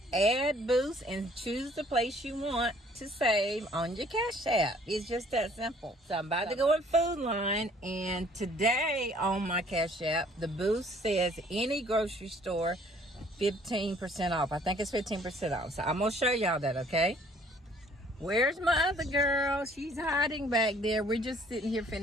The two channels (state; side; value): normal; both; correlation 0.58